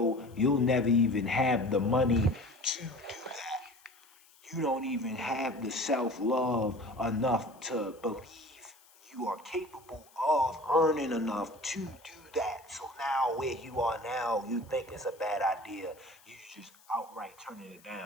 you'll never even have the money to do that. You don't even have the self love enough to believe you are capable of earning enough to do that. So now, where you are now, you think it's a bad idea. You just outright turning it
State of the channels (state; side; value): noise; left; hiss, 28 dB below the sound